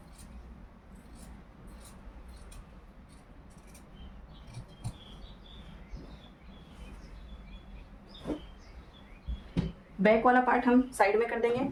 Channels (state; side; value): identical; both; correlation 1.00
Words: बैक वाला पार्ट हम साइड में कर देंगे